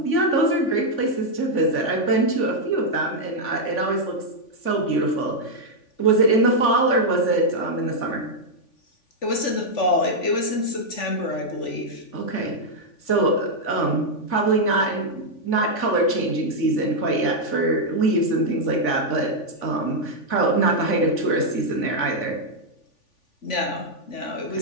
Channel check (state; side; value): late; right; 3.5 ms